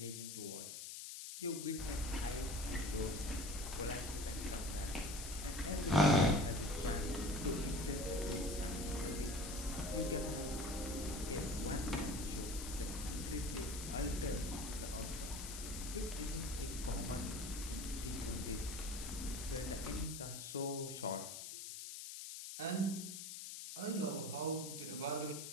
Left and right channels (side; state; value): left; noise; hiss, 8 dB below the sound